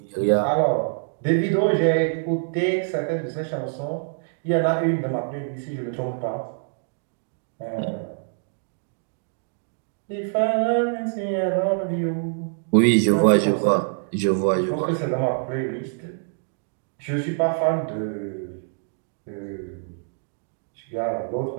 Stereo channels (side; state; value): left; silent; digital silence